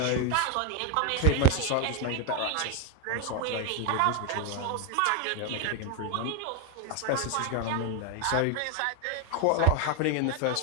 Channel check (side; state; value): both; different; correlation 0.01